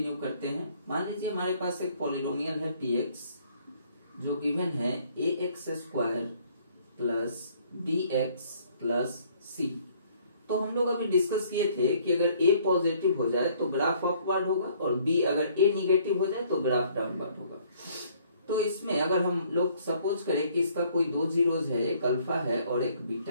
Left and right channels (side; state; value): both; inverted; correlation -0.61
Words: करते हैं। मान लीजिए हमारे पास एक पॉलिनोमियल है px जो गिवन है ax² plus bx plus c। तो हम लोग अभी डिस्कस किए थे कि अगर a पॉजिटिव हो जाए तो ग्राफ अपवर्ड होगा और b अगर a निगेटिव हो जाए तो ग्राफ डाउनवर्ड होगा। तो इसमें अगर हम लोग सपोज करें कि इसका कोई दो जीरोज है, एक अल्फा है और एक